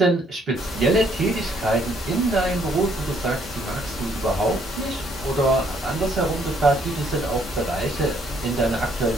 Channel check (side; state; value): both; normal; correlation 0.67